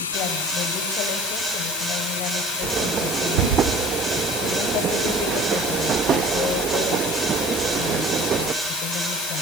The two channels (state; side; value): normal; both; correlation 0.43